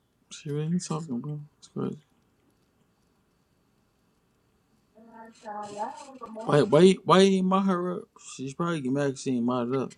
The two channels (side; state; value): both; identical; correlation 1.00